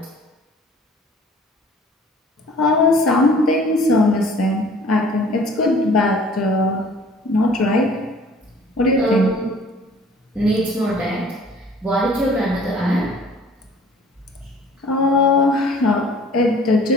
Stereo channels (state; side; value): normal; both; correlation 0.52